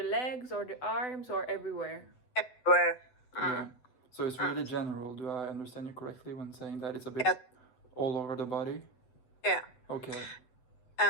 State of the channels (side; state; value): right; late; 7.9 ms